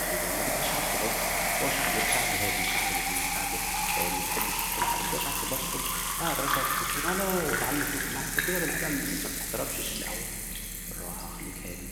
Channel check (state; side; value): identical; both; correlation 1.00